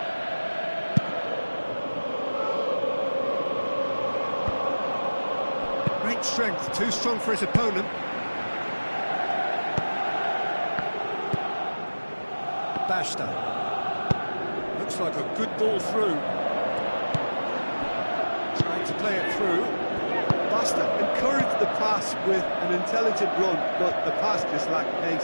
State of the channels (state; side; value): inverted; both; correlation -1.00